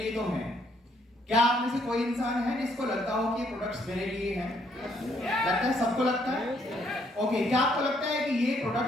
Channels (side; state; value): both; normal; correlation 0.69